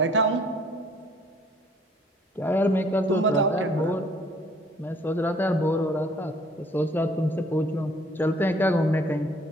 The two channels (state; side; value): normal; both; correlation 0.58